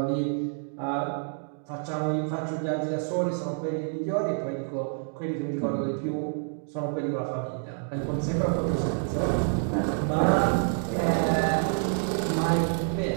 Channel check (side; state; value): left; silent; 59 dB below the other